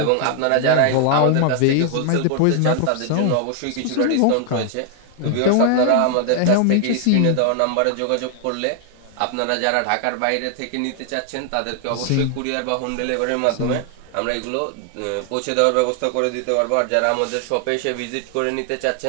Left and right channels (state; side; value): different; both; correlation 0.00